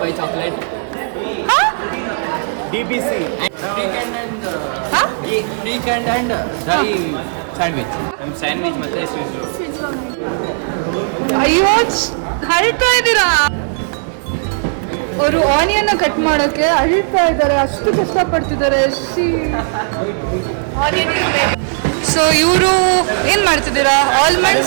by chocolate. DBC. Weekend and dairy sandwich. Sandwich ಮತ್ತೆ sweet roll. ಅಯ್ಯೋ ಹರಿತಾ ಇದ್ದೀರಾ. ಅವರು ಆನಿಯನ್ ಕಟ್ ಮಾಡೋಕೆ ಅಳಿತಾ ಇದ್ದಾರೆ. ಅಷ್ಟು ಕಷ್ಟಪಡ್ತಿದ್ದಾರೆ. ಸೊ ಇವರು ಏನ್ ಮಾಡ್ತಿದ್ದೀರಾ? Almond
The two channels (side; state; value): left; silent; digital silence